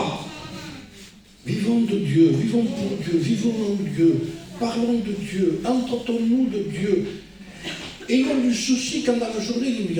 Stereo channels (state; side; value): identical; both; correlation 1.00